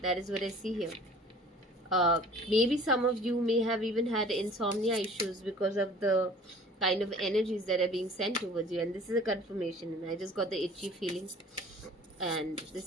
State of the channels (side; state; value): both; normal; correlation 0.47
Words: that is what I see here. Maybe some of you may have even had insomnia issues because of the kind of energies that are being sent towards you. And this is a confirmation. And I just got the itchy feeling. And